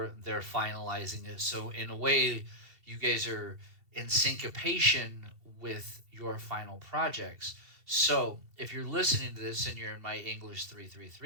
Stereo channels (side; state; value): left; late; 2.7 ms